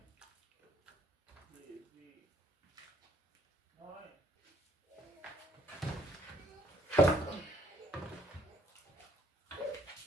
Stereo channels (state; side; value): normal; both; correlation 0.66